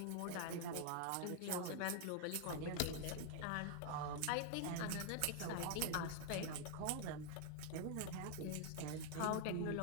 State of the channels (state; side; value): different; both; correlation 0.00